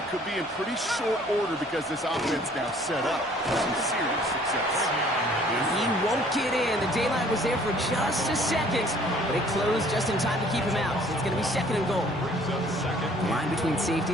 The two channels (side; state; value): both; normal; correlation 0.56